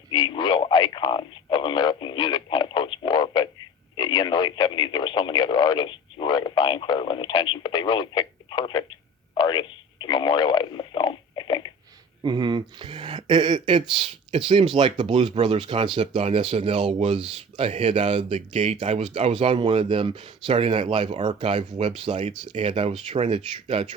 the real icons of American music kind of post-war. But in the late 70s, there were so many other artists who were vying for everyone's attention, but they really picked the perfect artists to memorialize in the film, I think. Mm-hmm. It seems like the Blues Brothers concept on SNL was a hit out of the gate. I was on one of them Saturday Night Live archive websites, and I was trying to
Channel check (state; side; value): normal; both; correlation 0.38